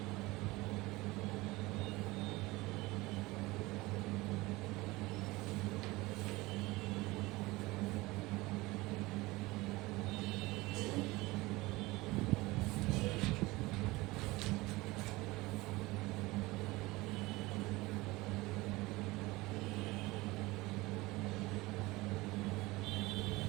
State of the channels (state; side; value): quieter; left; 21.1 dB